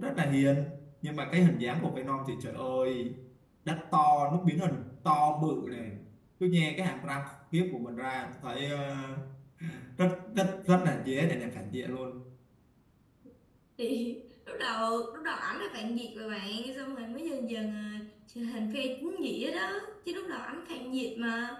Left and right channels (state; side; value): identical; both; correlation 1.00